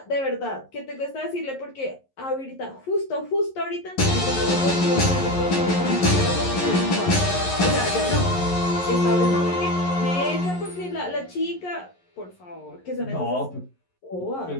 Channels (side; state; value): right; late; 11 ms